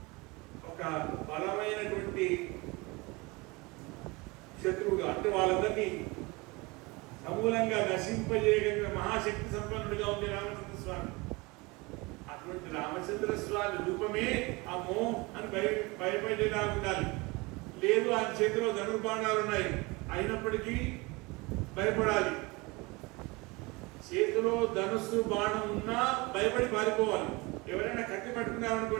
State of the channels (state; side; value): quieter; left; 24.9 dB